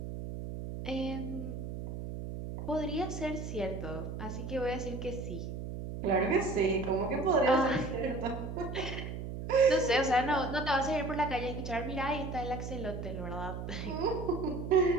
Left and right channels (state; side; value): noise; right; hum, 7 dB below the sound